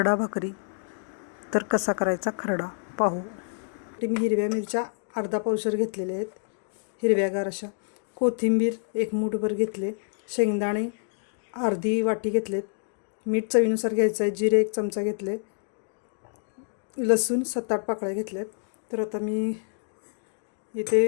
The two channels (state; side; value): silent; right; digital silence